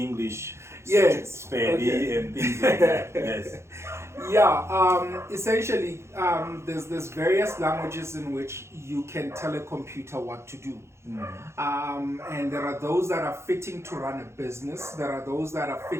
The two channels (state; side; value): late; left; 0.13 ms